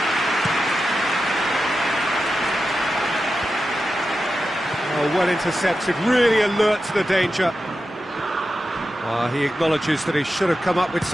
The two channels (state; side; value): normal; both; correlation 0.91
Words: Oh, well intercepted, really alert to the danger. He acknowledges that he should have come up with